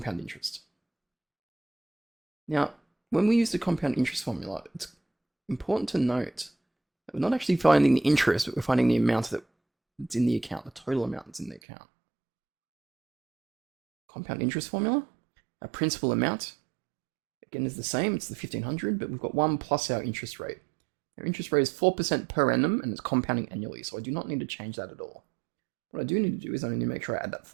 interest. Now, when we use the compound interest formula, it's important to note that we're not actually finding the interest, but we're finding the amount that's in the account, the total amount that's in the account. Compound interest formula, our principal amount, again, is the same, it's the 1,500, but we've got 1 plus our interest rate. Our interest rate is 4% per annum, and it's compounding annually, so I do not need to change that at all. What I do need to do is I need to make sure I add that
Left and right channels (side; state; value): left; drops out; at 11.6 s